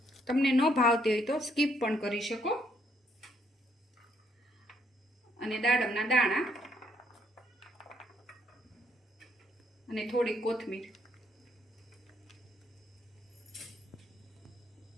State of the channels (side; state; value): both; normal; correlation 0.70